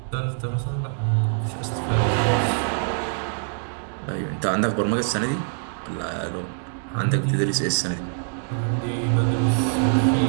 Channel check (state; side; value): silent; left; 62 dB below the other